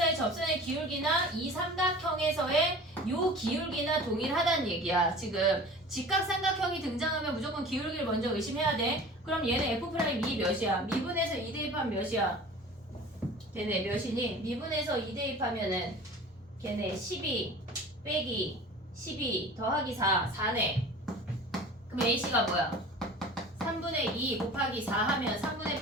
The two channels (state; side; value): normal; both; correlation 0.41